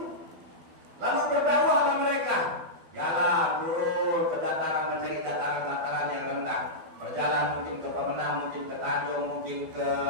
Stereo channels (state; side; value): late; left; 12 ms